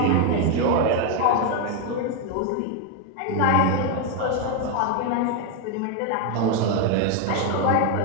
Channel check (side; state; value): both; different; correlation 0.01